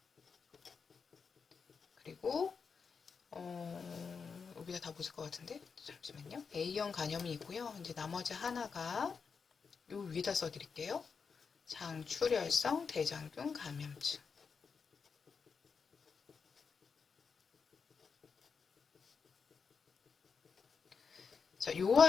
그리고 여기다 다 보실 것 같은데 잠시만요. A형 간염이 있고요. 이제 나머지 하나가 요 위에다 써드릴게요. 장출혈성 대장균 감염증. 자, 요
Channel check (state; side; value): quieter; right; 5.6 dB